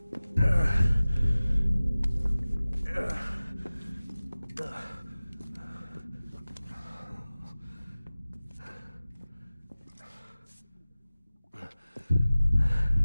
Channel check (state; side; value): inverted; both; correlation -0.97